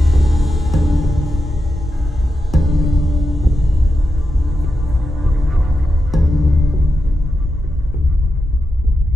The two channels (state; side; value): normal; both; correlation 0.88